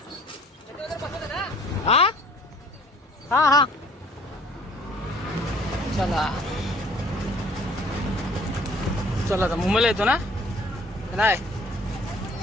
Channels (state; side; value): normal; both; correlation 0.55